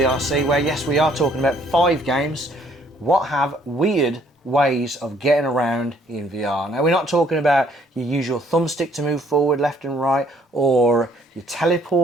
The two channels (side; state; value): both; normal; correlation 0.63